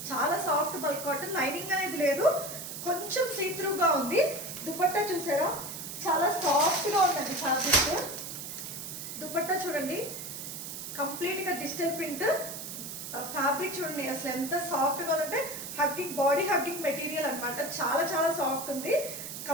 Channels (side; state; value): right; noise; hiss, 8 dB below the sound